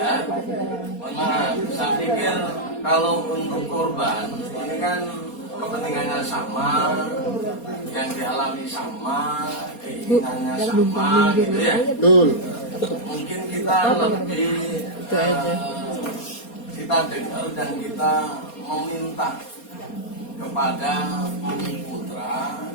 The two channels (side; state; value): right; late; 4.3 ms